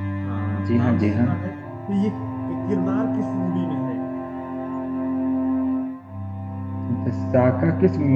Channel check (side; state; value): both; identical; correlation 1.00